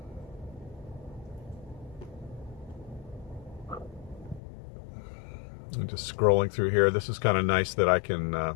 I'm just scrolling through here. This is kind of nice that I can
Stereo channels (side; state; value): right; drops out; at 4.4 s